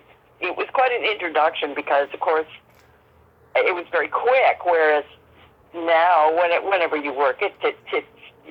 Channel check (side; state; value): both; identical; correlation 1.00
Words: it was quite an introduction because, of course, it was very quick. Whereas now, whenever you work,